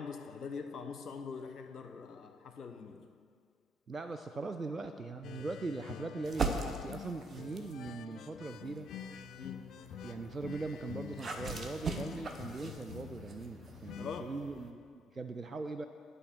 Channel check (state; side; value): normal; both; correlation 0.71